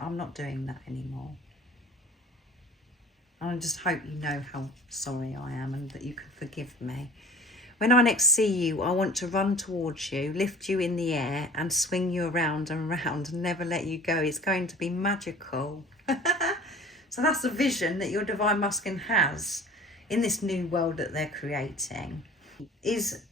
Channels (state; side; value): normal; both; correlation 0.46